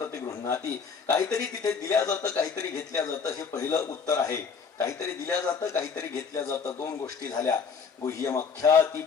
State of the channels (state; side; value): quieter; right; 5.8 dB